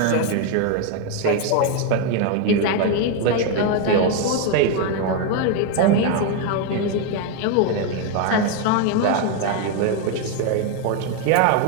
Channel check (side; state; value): both; different; correlation 0.01